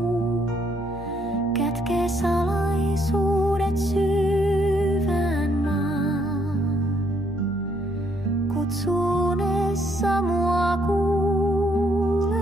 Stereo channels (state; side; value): normal; both; correlation 0.70